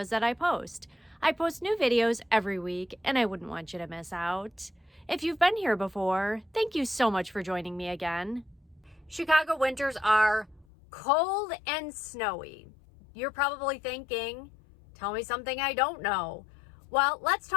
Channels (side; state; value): right; drops out; at 10.7 s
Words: that I post. I post new videos every week, and I wouldn't want you to miss out. If you've been here before, thank you so much for joining me again. Chicago winters are cold and snowy. You're probably thinking, tell me something I don't know. Well, let's